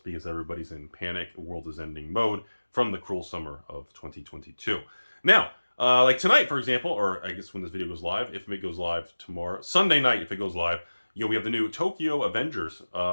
everybody's in panic, the world is ending mode from the cruel summer of 2022. Now, Like tonight, for example, or I guess when this video goes live, if it goes live tomorrow, Sunday night, if it goes live, we have the new Tokyo Avengers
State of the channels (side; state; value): both; inverted; correlation -1.00